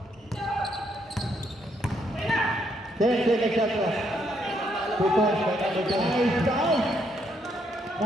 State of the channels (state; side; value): normal; both; correlation 0.74